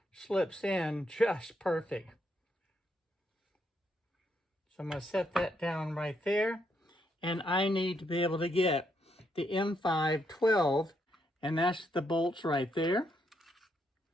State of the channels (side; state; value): both; normal; correlation 0.77